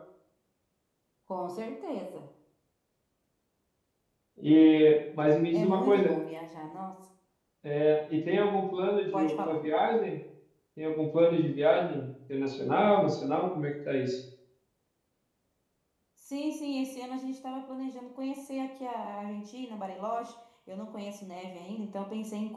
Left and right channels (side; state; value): both; identical; correlation 1.00